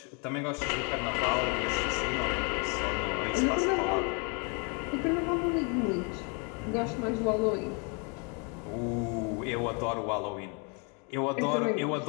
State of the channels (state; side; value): quieter; right; 34.8 dB